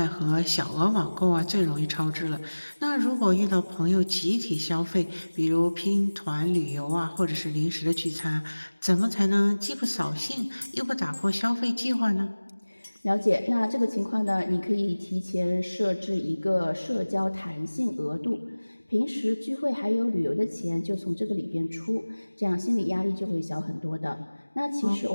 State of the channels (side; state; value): both; inverted; correlation -1.00